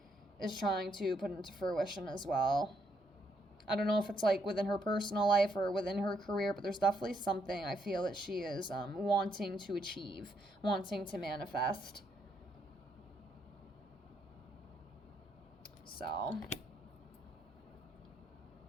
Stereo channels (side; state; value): both; normal; correlation 0.75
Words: is trying to put into fruition as well. I don't know if it's like within her personal life or within her career, but there's definitely something I feel that she is wanting to achieve, wanting to manifest. So,